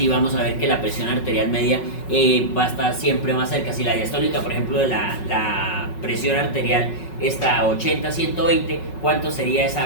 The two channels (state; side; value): late; right; 5.4 ms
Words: vamos a ver que la presión arterial media va a estar siempre más cerca. Si la diastólica, por ejemplo, de la presión arterial está a 80, 120, ¿cuánto sería